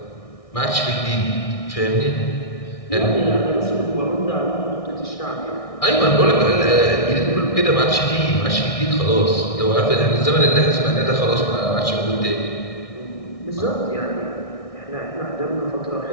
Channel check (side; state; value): right; late; 1.6 ms